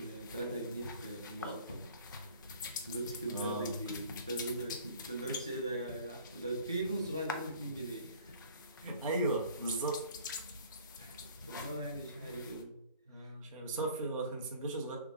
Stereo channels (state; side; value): inverted; both; correlation -0.50